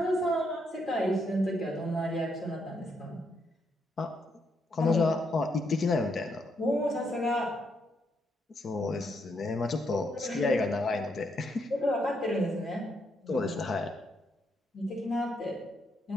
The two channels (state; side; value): normal; both; correlation 0.77